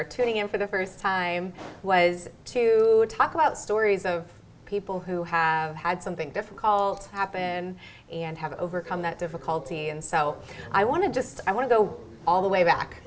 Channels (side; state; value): both; identical; correlation 1.00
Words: tuning in for the first time, was to talk about stories of people who have had something difficult happen and have overcome that difficulty. And so I want to go all the way back,